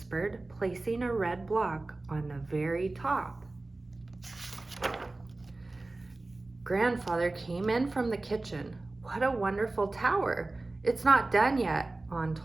placing a red block on the very top. Grandfather came in from the kitchen. "What a wonderful tower. It's not done yet," On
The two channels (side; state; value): left; quieter; 3.1 dB